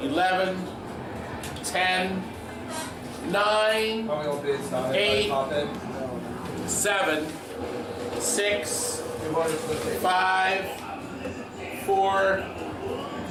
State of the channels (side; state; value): both; identical; correlation 1.00